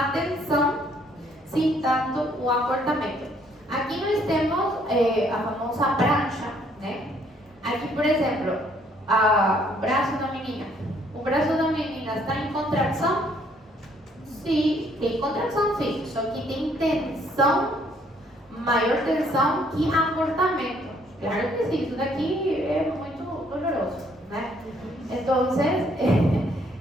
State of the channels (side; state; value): both; normal; correlation 0.65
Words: tensão sem tanto o acortamento. Aqui nós temos a famosa prancha, né? Aqui, por exemplo, o braço da menina. O braço da menina está em contração? Sim, tem contração, sim. Só que tem tensão, maior tensão que acortamento. Claro que sim, isso daqui é muito doloroso, né? Então,